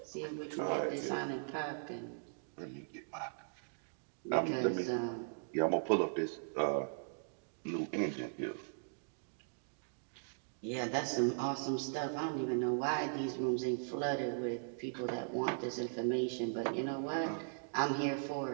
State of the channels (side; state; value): left; silent; digital silence